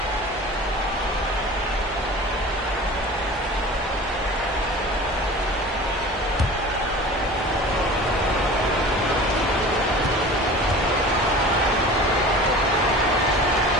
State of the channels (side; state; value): both; normal; correlation 0.39